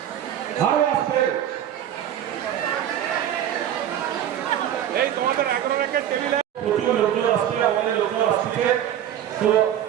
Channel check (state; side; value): quieter; left; 10.7 dB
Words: প্রচুর লোকজন আসছে, আমাদের লোকজন আসছে, তো